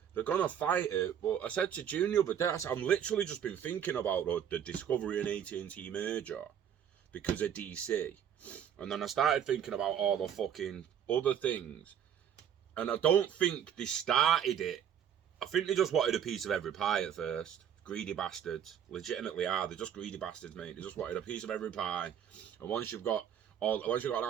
They're going to fight it. But I said to June the other day, I said, I'm literally just been thinking about the Discovery and AT&T merger because of DC. And then I started thinking about all the fucking other things. And I don't think they started it. I think they just wanted a piece of every pie at first. Greedy bastards. Legitimately are. They're just greedy bastards, mate. They just wanted a piece of every pie. And once you've got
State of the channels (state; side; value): quieter; left; 9.0 dB